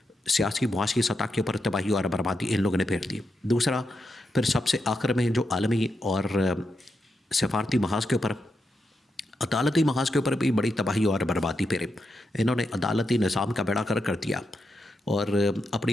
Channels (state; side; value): normal; both; correlation 0.85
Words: سیاسی معاشی سطح کے اوپر تباہی اور بربادی ان لوگوں نے پھیر دی۔ دوسرا پھر سب سے آخر میں جو عالمی اور سفارتی محاذ کے اوپر، عدالتی محاذ کے اوپر بھی بڑی تباہی اور بربادی پھیرے۔ انہوں نے عدالتی نظام کا بیڑا کر دیا، اور